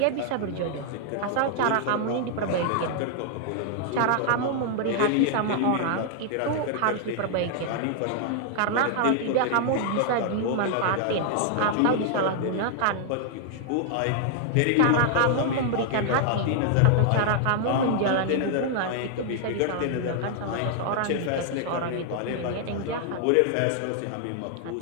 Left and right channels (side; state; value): both; different; correlation -0.01